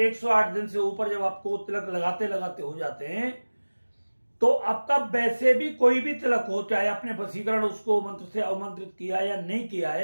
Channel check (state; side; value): inverted; both; correlation -1.00